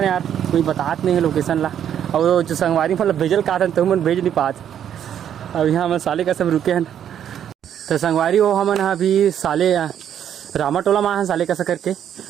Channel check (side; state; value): left; quieter; 9.6 dB